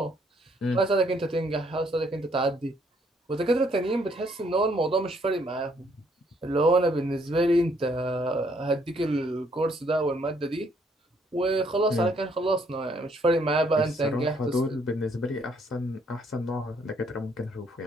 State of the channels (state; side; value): normal; both; correlation 0.68